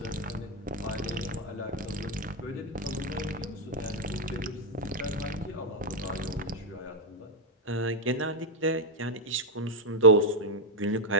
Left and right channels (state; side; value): normal; both; correlation 0.01